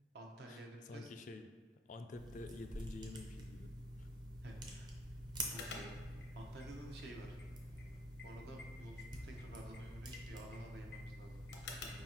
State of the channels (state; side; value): normal; both; correlation 0.65